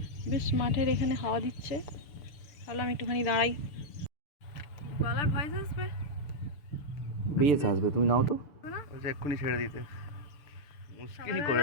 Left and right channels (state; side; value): late; right; 6.8 ms